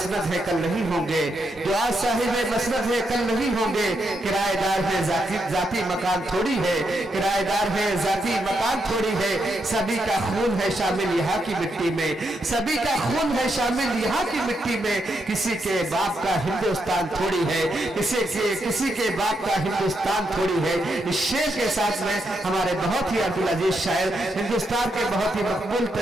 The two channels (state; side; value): normal; both; correlation 0.81